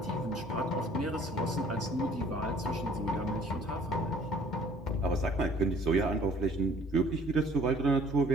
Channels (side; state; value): both; normal; correlation 0.55